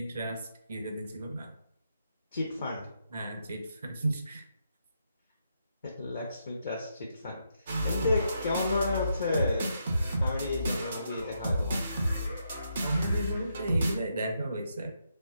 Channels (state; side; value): inverted; both; correlation -0.80